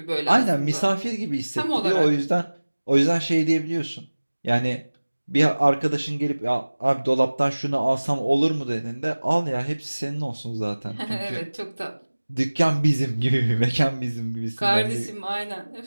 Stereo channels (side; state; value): both; inverted; correlation -1.00